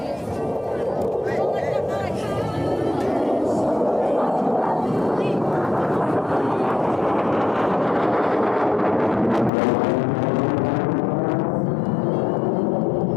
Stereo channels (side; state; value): right; drops out; at 9.5 s